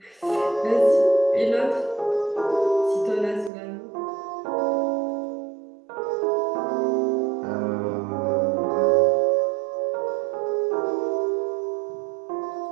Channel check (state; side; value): drops out; left; at 3.5 s